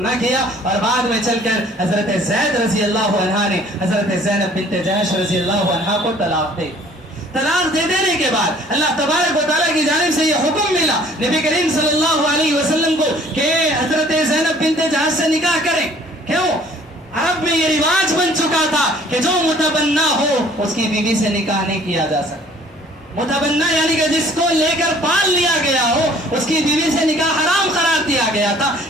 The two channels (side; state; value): both; normal; correlation 0.55